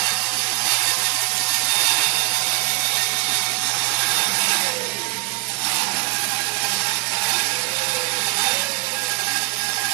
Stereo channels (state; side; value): quieter; left; 27.7 dB